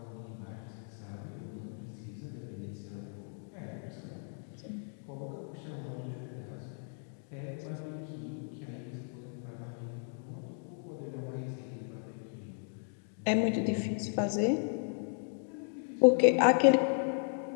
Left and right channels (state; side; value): silent; right; 54 dB below the other